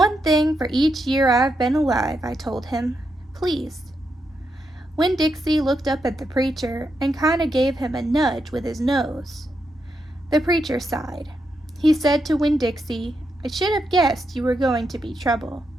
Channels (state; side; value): normal; both; correlation 0.83